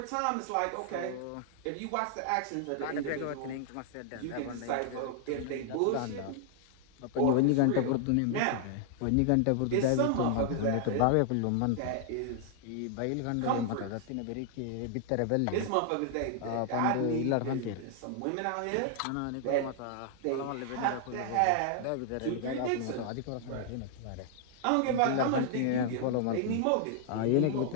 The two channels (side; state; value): both; different; correlation 0.00